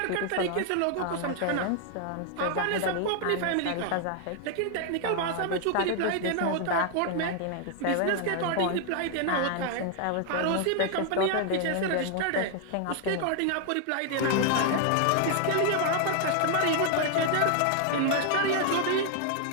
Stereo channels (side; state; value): both; different; correlation 0.00